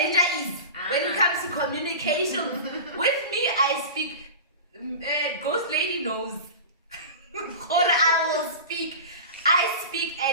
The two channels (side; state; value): both; inverted; correlation -0.31